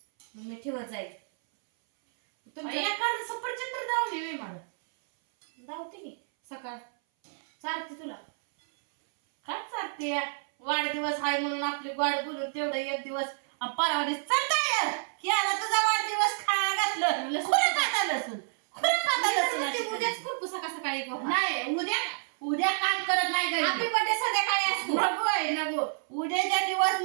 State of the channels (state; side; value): silent; left; 58 dB below the other